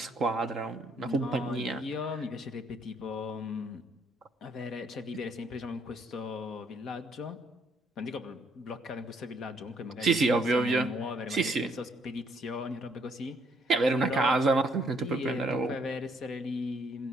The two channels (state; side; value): normal; both; correlation 0.68